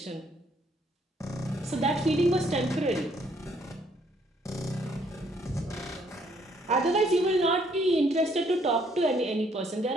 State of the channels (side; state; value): both; normal; correlation 0.67